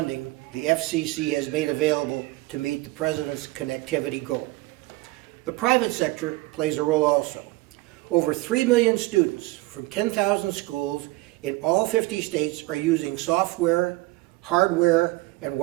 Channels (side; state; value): left; quieter; 21.1 dB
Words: the FCC has made available to meet the President's connectivity goal. The private sector plays a role also. Over 3 million students from 10,000 schools in all 50 states are using software, hardware, and